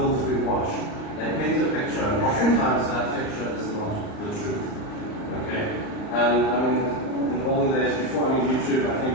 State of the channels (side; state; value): right; late; 39 ms